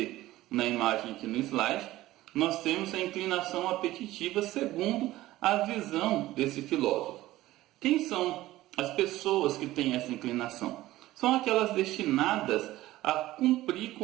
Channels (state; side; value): quieter; left; 16.3 dB